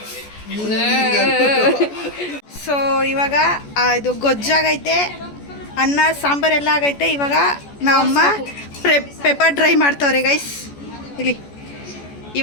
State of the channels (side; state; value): right; late; 14 ms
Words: ಸೊ ಇವಾಗ ಇದು ಗೊಜ್ಜಾಗೈತೆ, ಅನ್ನ ಸಾಂಬಾರೆಲ್ಲ ಆಗೈತೆ. ಇವಾಗ ನಮ್ಮಮ್ಮ ಪೆಪ್ಪರ್ ಡ್ರೈ ಮಾಡ್ತವ್ರೆ ಗೈಸ್ ಇಲ್ಲಿ.